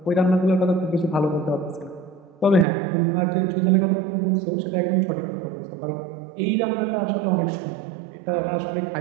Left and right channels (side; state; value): left; drops out; at 2.7 s